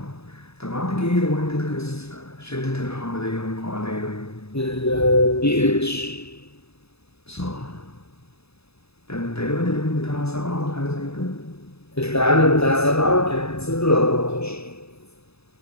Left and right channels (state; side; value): late; right; 0.79 ms